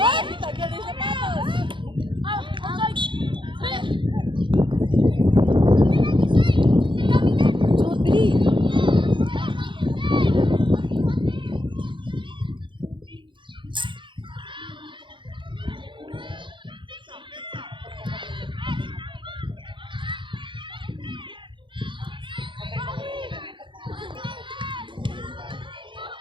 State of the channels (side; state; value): left; late; 0.23 ms